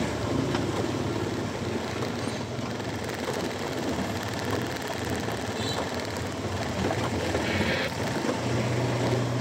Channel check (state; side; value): identical; both; correlation 1.00